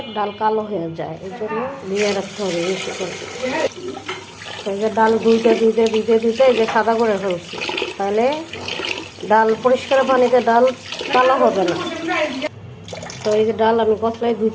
ডাল কালো হয়ে যায়, এই জন্য ভিজিয়ে রাখতে হবে বেশি করে। এই যে ডাল ধুইতে ধুইতে ধুইতে ধুইতে এই যে সাদা করে ফেলছি, তাহলে ডাল পরিষ্কার পানিতে ডাল কালো হবে না। তো এই যে ডাল আমি কসলায়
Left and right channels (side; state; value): both; identical; correlation 1.00